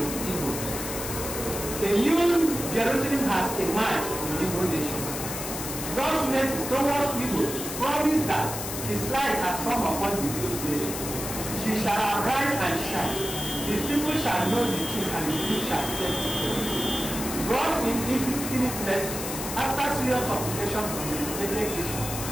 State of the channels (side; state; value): left; noise; hiss, 6 dB below the sound